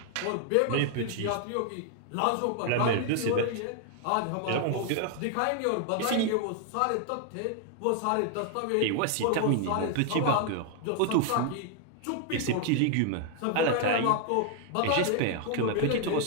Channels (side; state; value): both; different; correlation 0.00